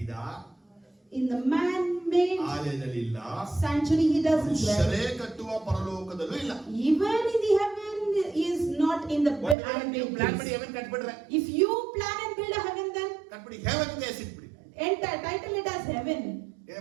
In the man-made ಆಲಯದಲ್ಲಿ ಇಲ್ಲ, sanctuary he doesn't dwell. ಮನುಷ್ಯರೇ ಕಟ್ಟುವ ಪರಲೋಕದಲ್ಲೂ ಇಲ್ಲ. Even in the heaven is not in the ನೀವು ಪ್ಲಾನ್ ಮಾಡಿ place. ಹೆವನ್ ಕಟ್ಬಿಡ್ರೆ, If you plan and build a heaven, then ಕಟ್ಬಿಡಿ, ಹೆವನ್ ಅಂತ ಹೆಸರಿಟ್ಬಿಡಿ. enter, title it as heaven.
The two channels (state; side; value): drops out; left; at 9.6 s